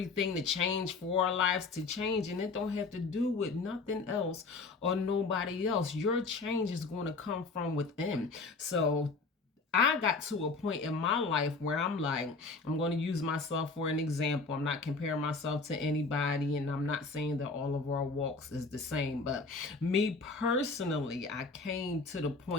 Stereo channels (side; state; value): right; quieter; 4.0 dB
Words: to change, for our lives to change. And it don't have to do with nothing else or nobody else. Your change is going to come from within. So I got to a point in my life where I'm like, I'm going to use myself for an example. I'm not comparing myself to anybody, and I'm not saying that all of our walks is the same. But me personally, I came to the